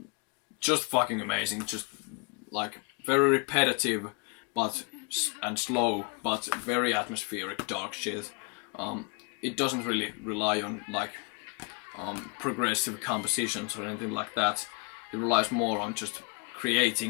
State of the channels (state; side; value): quieter; right; 33.3 dB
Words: fucking amazing. Just like very repetitive, and slow, but very atmospheric, dark shit. It doesn't really rely on like progressive compositions or anything like that. It relies more on just